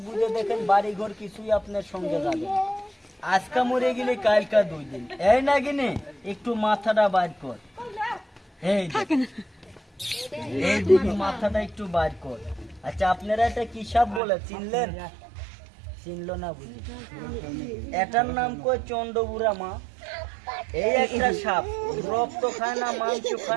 বুঝে দেখেন বাড়ি ঘর কিছুই আপনার সঙ্গে যাবে না। আজকা মরে গেলে কালকা 2 দিন। এই না গিনে একটু মাথাটা বাইর কর, এই দিকে মাথাটা একটু বাইর কর। আচ্ছা আপনারা এটা কি সাপ বলে চিনলেন? চিনলো না বুঝি? এটার নাম কই চন্ডবুড়া মা। এই একটা সাপ, রক্ত খায় না, মাংস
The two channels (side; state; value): left; drops out; at 14.2 s